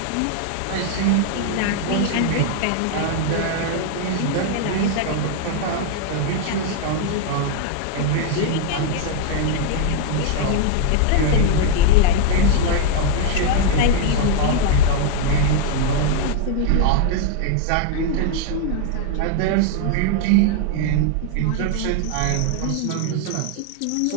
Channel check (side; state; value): both; different; correlation 0.00